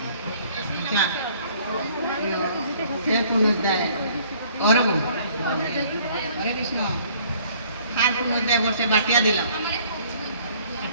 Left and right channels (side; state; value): both; inverted; correlation -0.58